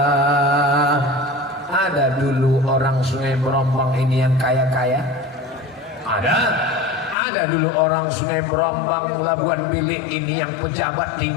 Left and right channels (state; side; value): drops out; right; at 7.2 s